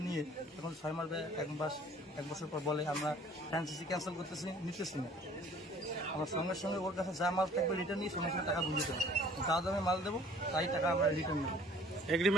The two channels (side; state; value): both; normal; correlation 0.53